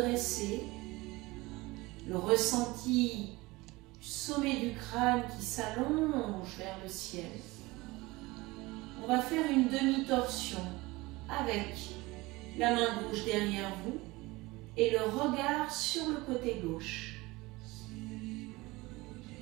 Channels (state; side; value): quieter; left; 21.7 dB